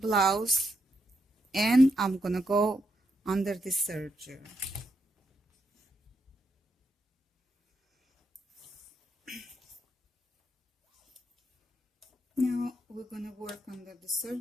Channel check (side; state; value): both; normal; correlation 0.80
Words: and I'm going to go under the serger. Now we're going to work under the